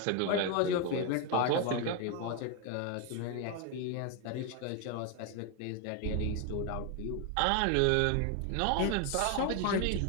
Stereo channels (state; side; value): different; both; correlation 0.01